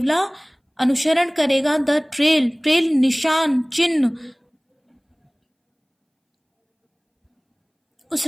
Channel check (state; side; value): identical; both; correlation 1.00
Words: अनुसरण करेगा। द ट्रेल, ट्रेल निशान, चिन्ह, उस